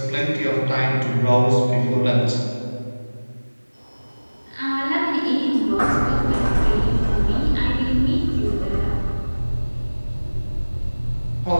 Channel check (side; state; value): both; inverted; correlation -1.00